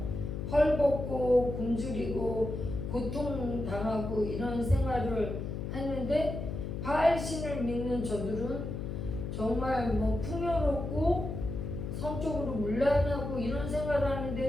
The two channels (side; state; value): left; noise; hum, 5 dB below the sound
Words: 헐벗고 굶주리고 고통당하고 이런 생활을 하는데 바알신을 믿는 저들은 정말 뭐 풍요롭고 성적으로 문란하고 이런 생활을